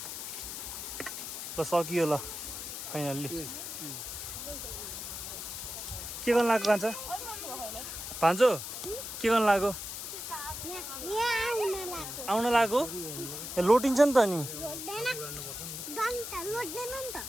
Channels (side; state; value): left; noise; hiss, 7 dB below the sound